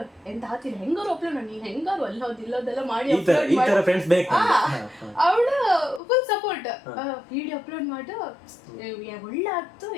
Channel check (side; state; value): right; drops out; at 6.0 s